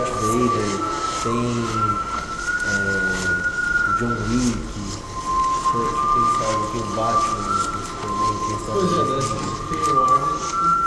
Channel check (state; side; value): identical; both; correlation 1.00